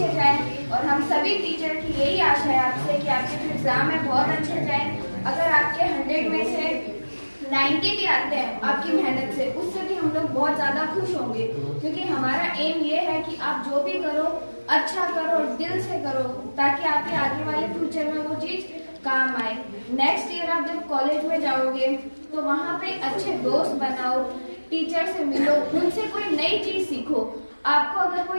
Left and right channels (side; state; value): both; inverted; correlation -1.00